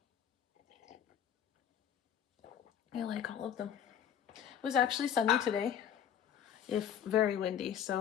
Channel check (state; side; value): quieter; right; 9.2 dB